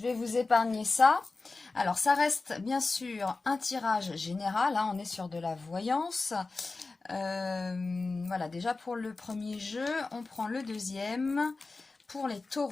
vais vous épargner ça. Alors ça reste bien sûr un tirage général, hein, on est sur de la voyance. Voilà, déjà pour le premier jeu, on prend le deuxième pour les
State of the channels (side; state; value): right; quieter; 3.7 dB